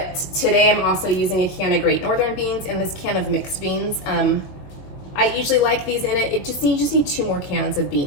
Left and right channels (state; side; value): late; right; 21 ms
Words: today I'm also using a can of Great Northern beans and this can of mixed beans. I usually like these in it. You just need 2 more cans of